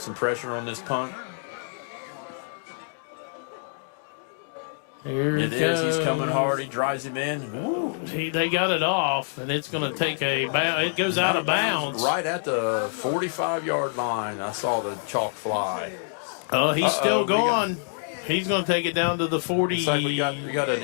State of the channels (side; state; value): right; silent; digital silence